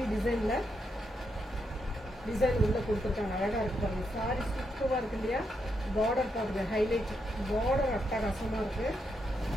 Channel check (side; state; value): both; normal; correlation 0.81